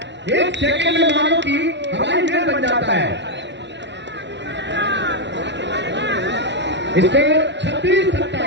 एक सेकंड में मानो कि हवाई महल बन जाता है। स्कोर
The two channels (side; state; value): left; late; 0.51 ms